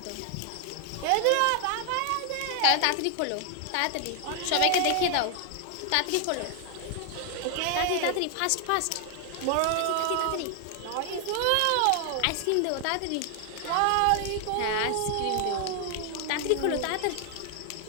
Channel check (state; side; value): different; both; correlation 0.00